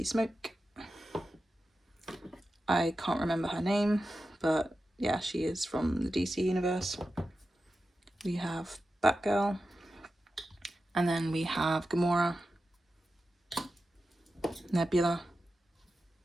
Smoke. I can't remember her name, but yeah, she is from the DC universe. We have Batgirl, and then we have Gamora, Nebula,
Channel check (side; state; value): both; normal; correlation 0.92